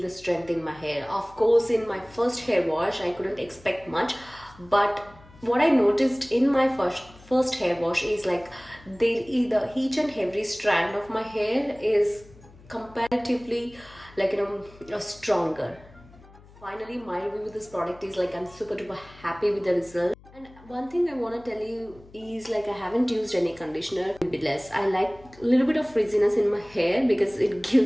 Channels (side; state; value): left; noise; hum, 23 dB below the sound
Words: the strength in my hair. Of course, in my first hair wash, I couldn't expect much, but what I noticed in my first hair wash is like each and every strand of my hair is comparatively stronger. Finally, my review with this product is like I'm super duper happy with the result. And one thing I want to tell you is like I haven't used any conditioner. A bit less. I like a little bit of frizziness in my hair because it